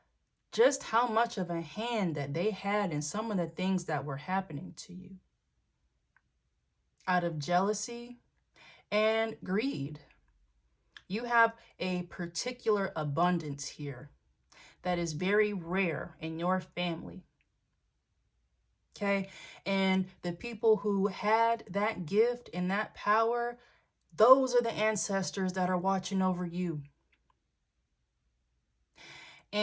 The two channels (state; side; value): identical; both; correlation 1.00